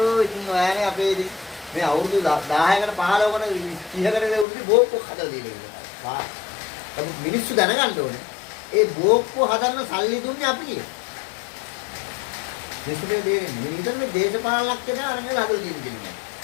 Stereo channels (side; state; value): right; drops out; at 4.5 s